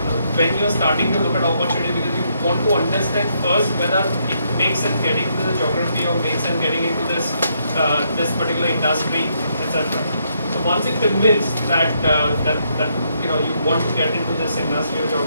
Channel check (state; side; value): inverted; both; correlation -0.75